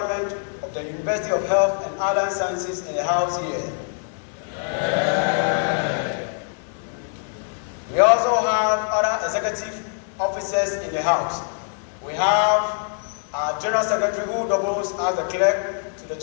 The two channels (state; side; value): silent; right; 59 dB below the other